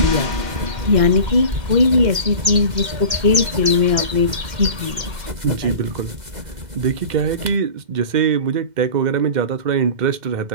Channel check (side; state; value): left; late; 2.1 ms